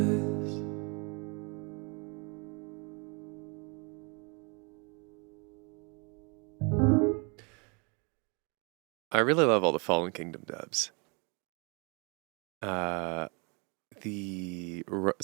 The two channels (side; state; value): left; quieter; 33.3 dB